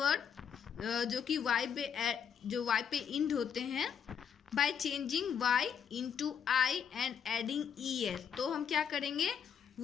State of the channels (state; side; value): quieter; right; 7.7 dB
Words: जो कि Y पे इंड होते हैं, by changing Y into I and adding ES। तो हम क्या करेंगे,